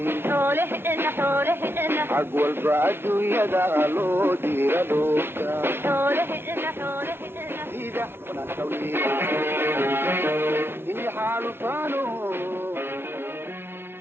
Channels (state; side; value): late; left; 0.11 ms